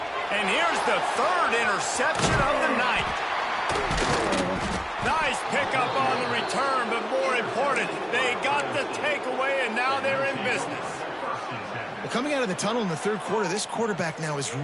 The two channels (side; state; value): both; identical; correlation 1.00